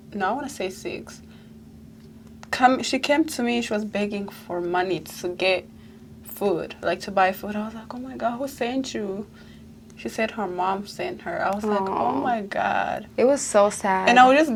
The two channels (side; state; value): both; identical; correlation 1.00